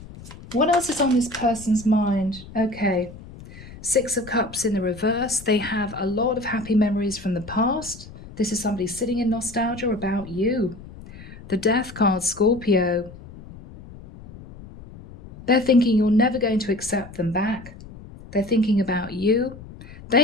What else is on this person's mind? Okay, Six of Cups in the reverse. They have a lot of happy memories from the past. This is somebody sitting in nostalgia about you. The Death card, Scorpio. They're thinking you're never going to accept them back. They're thinking about you.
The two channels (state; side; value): noise; left; rumble, 17 dB below the sound